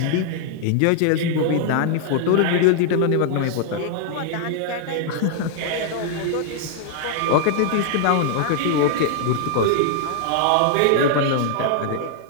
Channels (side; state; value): both; different; correlation -0.01